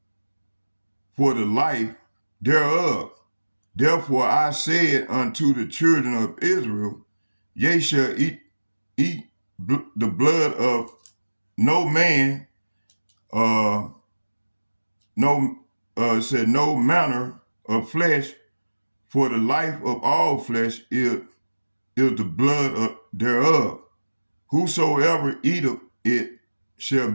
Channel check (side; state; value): both; inverted; correlation -1.00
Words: for the life thereof. Therefore I said unto the children of Israel, ye shall eat the blood of no man, no said no manner of flesh, for the life of all flesh is the blood thereof. Whosoever eateth it shall